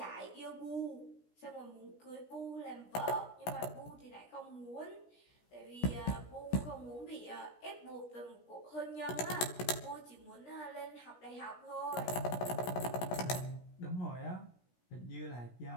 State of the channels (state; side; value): late; right; 17 ms